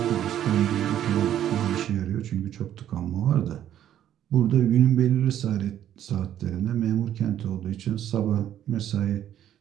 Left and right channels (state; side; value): quieter; left; 11.1 dB